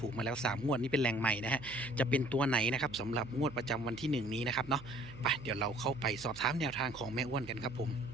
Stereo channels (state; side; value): noise; right; hum, 17 dB below the sound